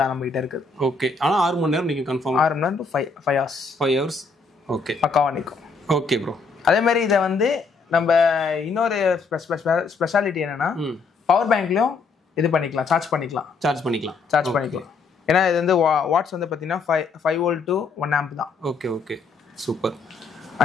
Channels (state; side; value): quieter; right; 4.5 dB